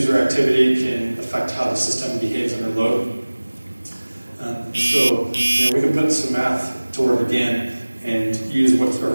activity can affect how the system behaves under load. So we can put some math to work again and use what are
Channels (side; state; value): both; inverted; correlation -1.00